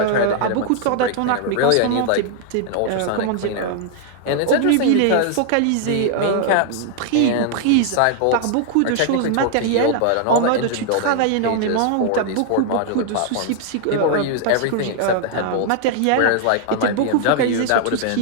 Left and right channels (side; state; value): both; different; correlation 0.00